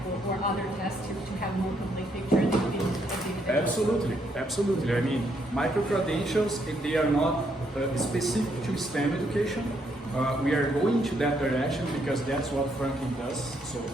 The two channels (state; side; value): normal; both; correlation 0.74